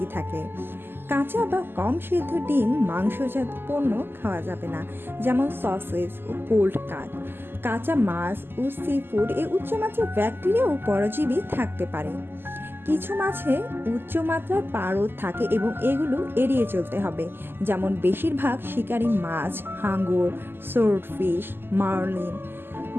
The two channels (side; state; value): left; late; 0.10 ms